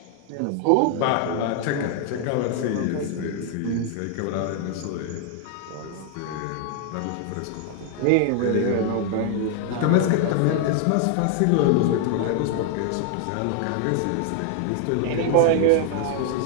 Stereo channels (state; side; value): different; both; correlation 0.00